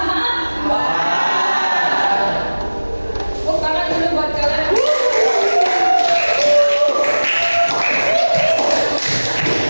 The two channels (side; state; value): both; inverted; correlation -1.00